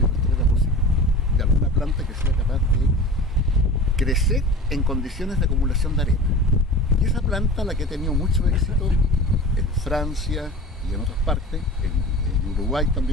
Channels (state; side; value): normal; both; correlation 0.36